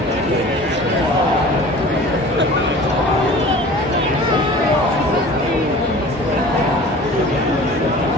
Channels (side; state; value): both; normal; correlation 0.42